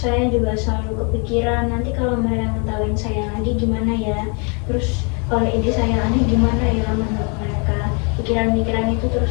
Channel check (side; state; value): right; quieter; 35.3 dB